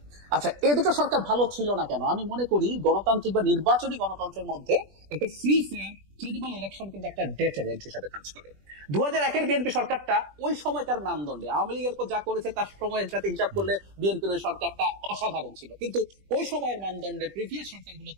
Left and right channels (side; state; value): left; late; 20 ms